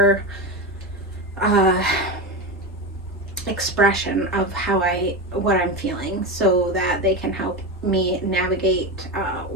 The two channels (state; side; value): normal; both; correlation 0.19